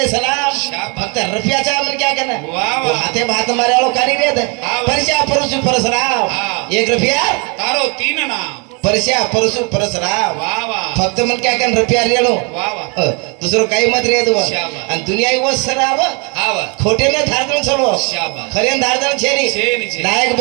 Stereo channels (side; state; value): left; quieter; 33.0 dB